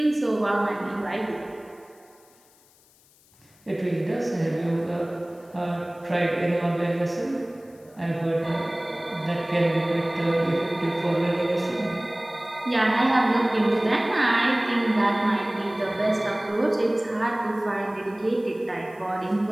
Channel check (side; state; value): left; noise; hiss, 30 dB below the sound